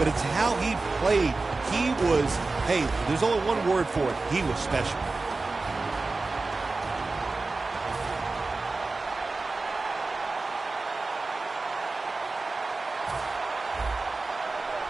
it's how he played. He was, hey, there's only one word for it. He was special.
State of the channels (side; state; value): left; quieter; 3.6 dB